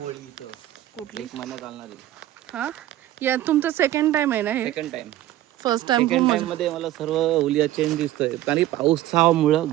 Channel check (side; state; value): left; quieter; 14.1 dB